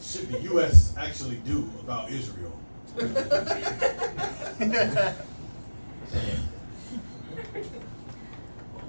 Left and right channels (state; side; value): inverted; both; correlation -1.00